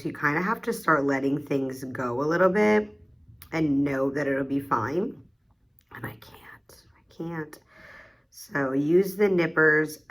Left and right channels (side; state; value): both; identical; correlation 1.00